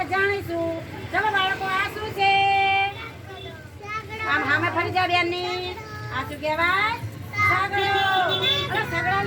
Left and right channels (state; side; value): identical; both; correlation 1.00